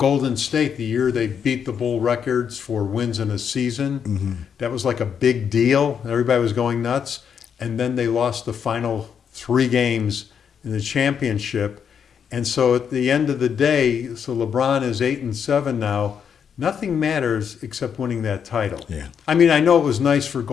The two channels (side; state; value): right; quieter; 7.4 dB